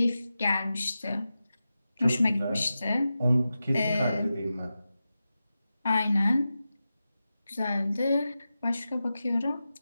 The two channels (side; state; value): both; inverted; correlation -0.93